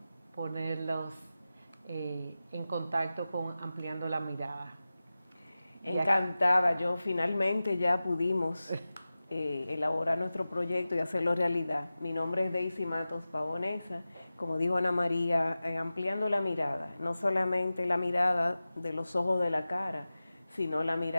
ponerlos en contacto con Ampliando la Mirada. Encantada, yo finalmente ya pudimos elaborar nuestro proyecto y hacerlo realidad. Mi nombre es Daisy Matos Pavonesa, como dijo Ana María, ampliando la mirada, no solamente la mirada de los ojos de la cara, sino la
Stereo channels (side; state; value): both; inverted; correlation -0.95